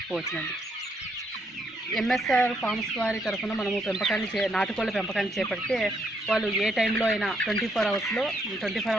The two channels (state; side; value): normal; both; correlation 0.74